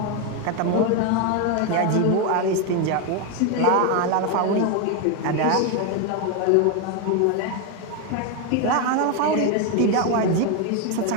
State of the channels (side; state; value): both; different; correlation 0.02